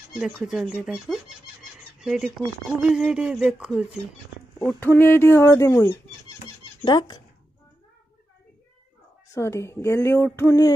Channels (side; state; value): both; normal; correlation 0.90